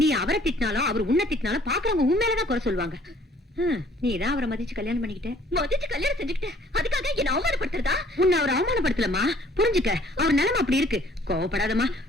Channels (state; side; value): normal; both; correlation 0.58